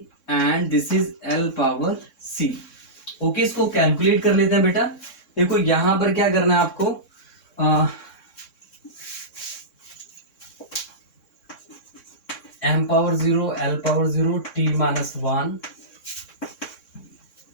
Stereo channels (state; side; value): late; right; 3.6 ms